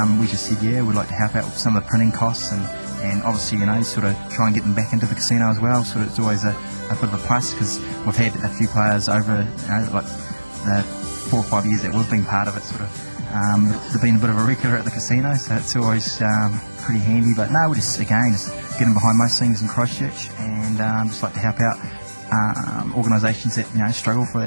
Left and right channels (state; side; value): inverted; both; correlation -1.00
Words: we just said, yeah, we'd like to help out with some of the printing costs, and obviously, you know, sort of try and get them back into the casino as well. Sort of it's always a bit of a plus, because we've had a few players over, you know, like the 4 or 5 years that we've been part of it, sort of they've been a bit of a regular at the casino, so it's always pretty handy. But no, we're just getting behind most things in Christchurch, and just like to help out organisations that, you know, struggle for